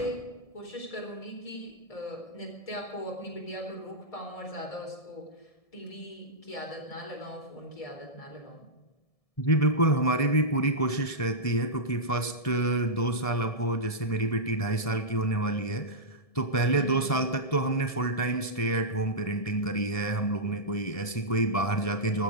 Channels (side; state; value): right; late; 1.7 ms